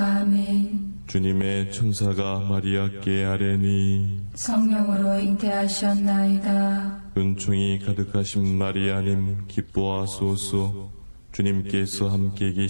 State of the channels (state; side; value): inverted; both; correlation -1.00